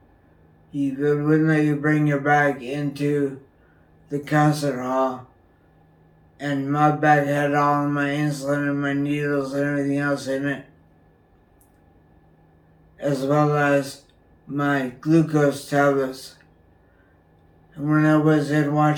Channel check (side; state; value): both; identical; correlation 1.00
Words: They wouldn't let you bring your bag into the concert hall. And my bag had all of my insulin and my needles and everything else in it, as well as my glucose tablets. And when I was in